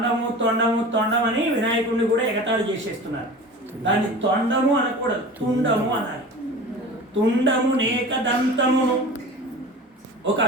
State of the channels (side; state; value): both; normal; correlation 0.36